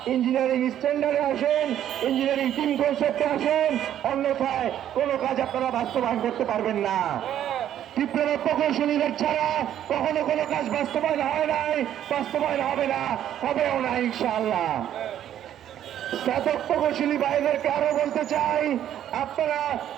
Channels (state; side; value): quieter; left; 10.9 dB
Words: ইঞ্জিনিয়ারিং স্ট্যান্ডার্ডে আসেন, ইঞ্জিনিয়ারিং টিম কনসেপ্টে আসেন, অন্যথায় কোনো কাজ আপনারা বাস্তবায়ন করতে পারবেন না। ডিপ্লোমা প্রকৌশলীদের ছাড়া কখনো কোনো কাজ বাস্তবায়ন হয় নাই, বাস্তবায়ন হবে না, হবেও না ইনশাআল্লাহ। স্নাতক প্রকৌশলী ভাইদেরকে আরো বলতে চাই, আপনারা